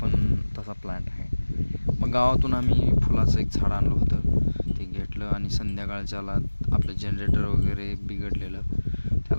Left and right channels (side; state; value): both; inverted; correlation -1.00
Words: पण तसा प्लॅन्ट आहे. मग गावातून आम्ही फुलाचं एक झाड आणलं होतं, ते घेतलं आणि संध्याकाळच्याला आपलं जनरेटर वगैरे बिघडलेलं